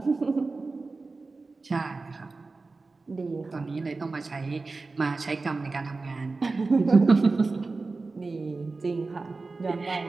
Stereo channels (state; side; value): quieter; left; 3.8 dB